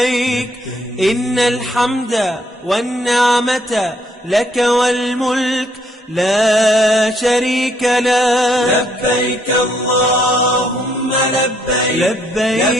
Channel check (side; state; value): both; normal; correlation 0.70